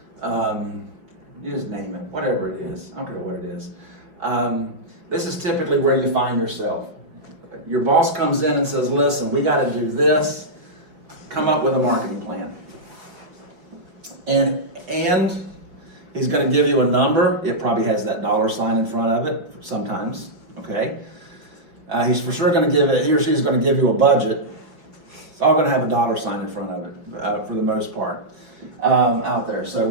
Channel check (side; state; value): left; late; 5.3 ms